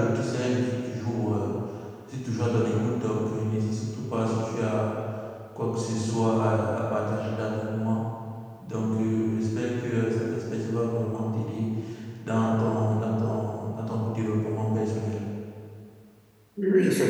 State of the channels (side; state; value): both; identical; correlation 1.00